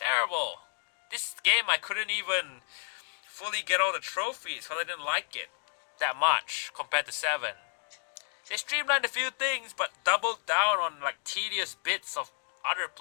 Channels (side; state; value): right; silent; digital silence